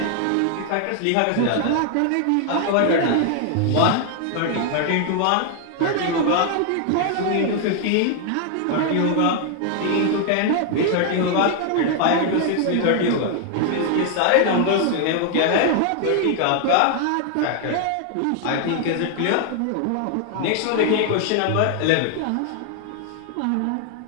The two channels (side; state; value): both; different; correlation 0.00